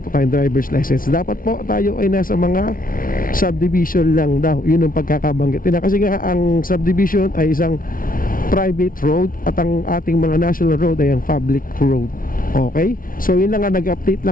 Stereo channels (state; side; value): late; right; 0.41 ms